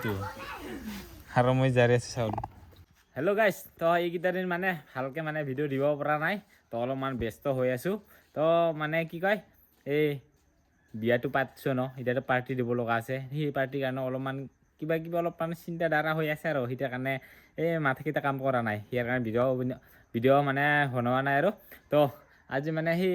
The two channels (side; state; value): both; identical; correlation 1.00